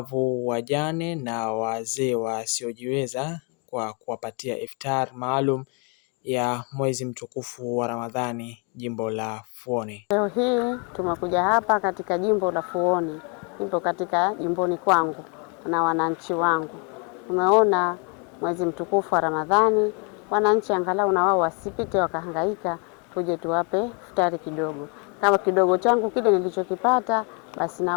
wajane na wazee wasiojiweza kwa kuwapatia iftar maalum ya mwezi mtukufu wa Ramadhani jimbo la Fuoni. Leo hii tumekuja hapa katika jimbo la Fuoni, nipo katika jimboni kwangu na wananchi wangu. Tumeona mwezi mtukufu wa Ramadhani, wananchi angalau na wao wasipite wakahangaika, tuje tuwape iftari kidogo. Kama kidogo changu kile nilichokipata, basi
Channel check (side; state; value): right; quieter; 35.2 dB